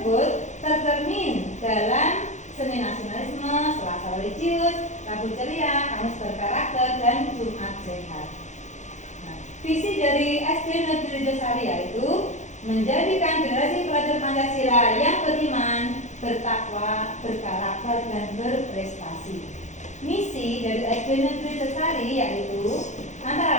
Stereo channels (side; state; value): right; late; 0.34 ms